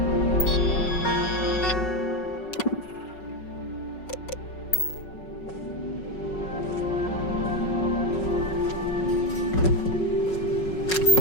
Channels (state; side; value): late; right; 5.4 ms